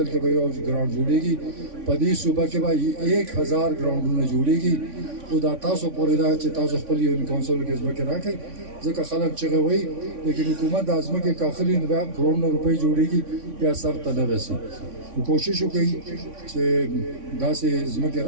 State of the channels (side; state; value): left; late; 3.5 ms